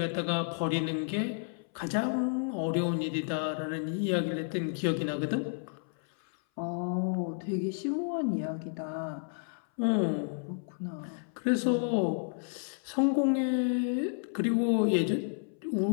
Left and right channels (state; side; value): silent; right; 57 dB below the other